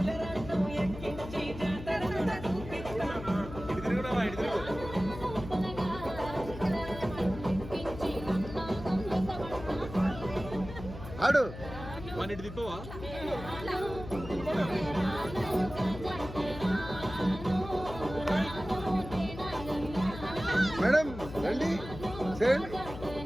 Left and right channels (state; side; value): noise; left; hum, 11 dB below the sound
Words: ఆడు మన ఇటు తిప్పవా మేడం రండి చేయండి